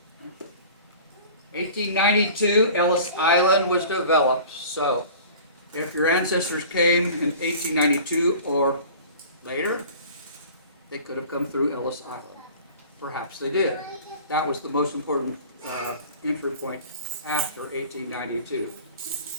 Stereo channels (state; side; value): inverted; both; correlation -0.43